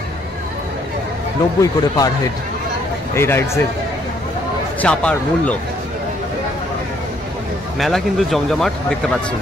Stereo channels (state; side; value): normal; both; correlation 0.67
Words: 90 করে পার হেড। এই রাইডসের চাপার মূল্য। মেলা কিন্তু জমজমাট দেখতে পাচ্ছেন।